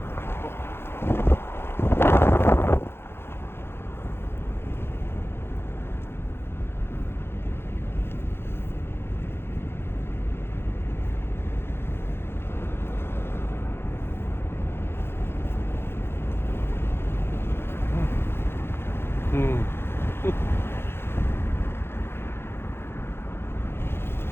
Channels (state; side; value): late; right; 0.11 ms